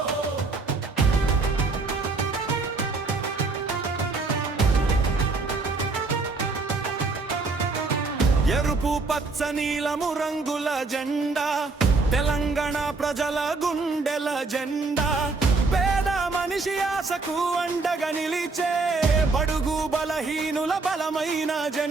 ఎరుపు పచ్చ నీలము రంగుల జెండా తెలంగాణ ప్రజల గుండెల జెండా పేద మనిషి ఆశకు అండగా నిలిచే బడుగు బలహీనుల బలమైన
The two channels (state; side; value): quieter; left; 3.9 dB